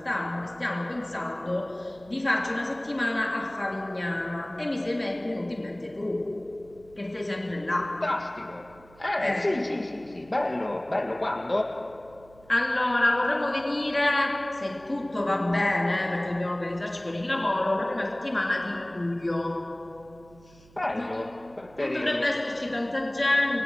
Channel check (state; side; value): noise; right; hum, 25 dB below the sound